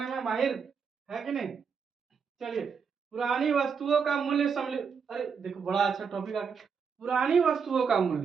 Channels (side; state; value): left; quieter; 6.1 dB